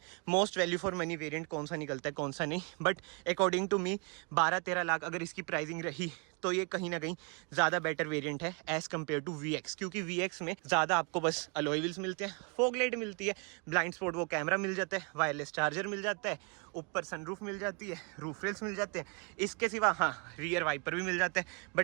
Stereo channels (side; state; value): left; quieter; 34.1 dB